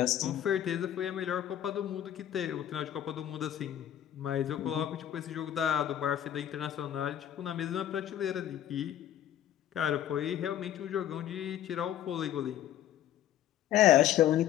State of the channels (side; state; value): right; quieter; 11.3 dB